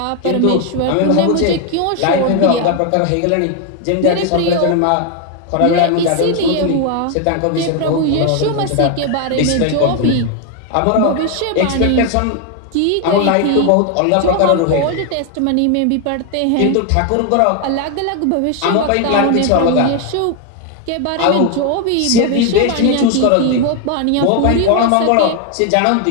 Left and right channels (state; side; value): different; both; correlation 0.01